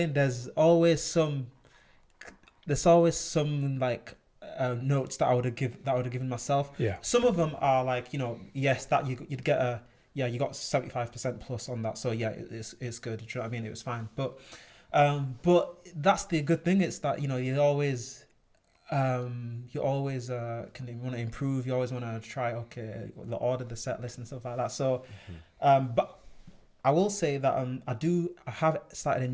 There's always some like notes that I would have given myself. Yeah. Some of them are like, yes, that you'd get you got 75% plus on that. So yeah, it's good. Do you know what I mean? It was fine. But that's the good thing. It's that, you always can want to improve. You always want to try, the order, the set list and stuff like that. So, but I will say that I have started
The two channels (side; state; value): both; identical; correlation 1.00